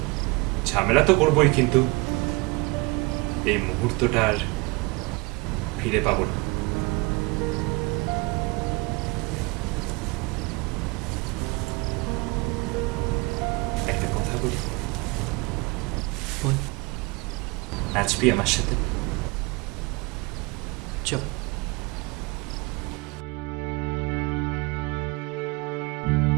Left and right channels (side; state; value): left; quieter; 26.2 dB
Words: ঝামেলা তো করবোই, কিন্তু এই মুহূর্তটা আর ফিরে পাবো না। একটা কথা বলি, বল। নাচবি আমার সাথে? চল।